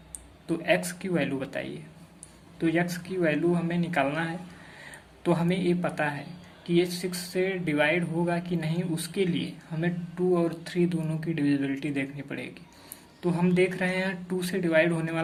तो x की वैल्यू बताइए। तो x की वैल्यू हमें निकालना है। तो हमें ये पता है कि ये 6 से डिवाइड होगा कि नहीं, उसके लिए हमें 2 और 3 दोनों की डिविजिबिलिटी देखनी पड़ेगी। तो हम देख रहे हैं 2 से डिवाइड होने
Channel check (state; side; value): identical; both; correlation 1.00